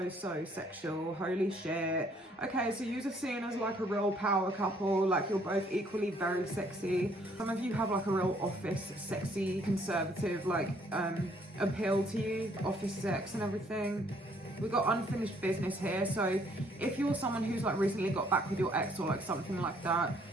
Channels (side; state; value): both; normal; correlation 0.64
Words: Holy shit. Okay, so yous are seen as like a real power couple, like you're both equally very sexy. Some of you have like a real office sexy conservative like appeal to you, office sex and everything. We've got unfinished business here, so if you're someone who's like recently got back with your ex or like something like that,